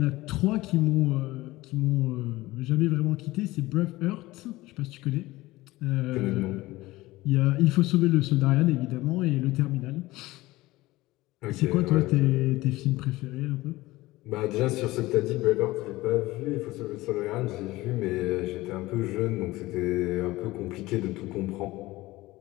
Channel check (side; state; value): right; quieter; 18.9 dB